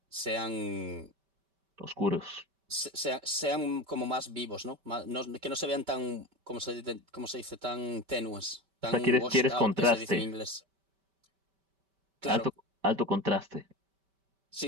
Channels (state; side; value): late; left; 5.2 ms